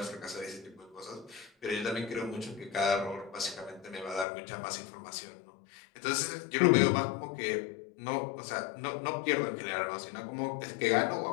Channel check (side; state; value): right; drops out; at 4.2 s